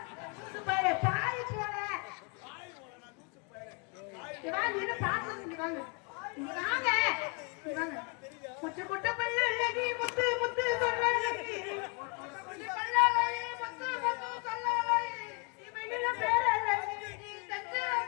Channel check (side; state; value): right; quieter; 32.8 dB